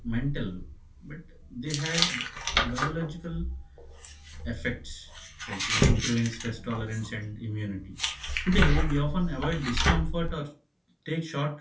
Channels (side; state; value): both; identical; correlation 1.00